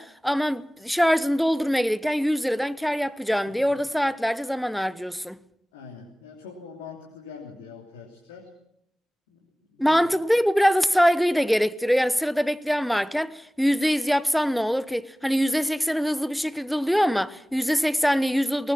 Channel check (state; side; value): normal; both; correlation 0.98